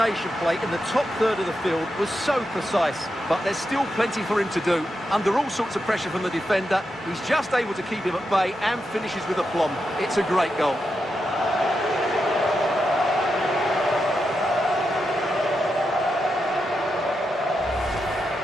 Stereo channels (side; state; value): both; normal; correlation 0.86